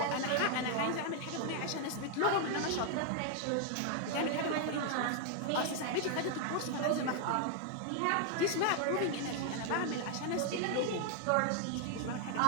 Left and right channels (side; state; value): both; different; correlation 0.00